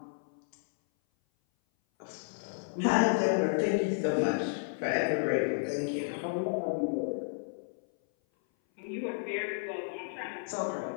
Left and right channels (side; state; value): right; silent; 56 dB below the other